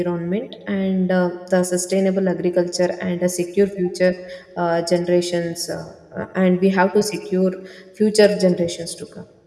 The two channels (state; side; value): identical; both; correlation 1.00